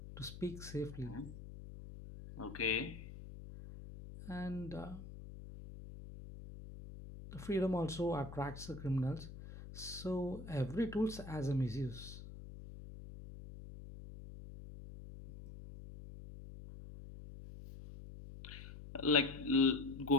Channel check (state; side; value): noise; left; hum, 12 dB below the sound